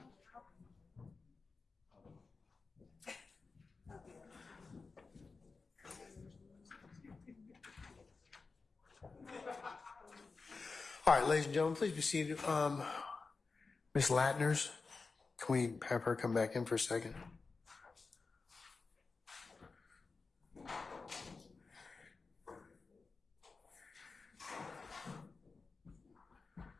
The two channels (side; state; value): right; quieter; 4.3 dB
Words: All right, ladies and gentlemen, please be seated. Ms. Latners, can we have her come back in for a second?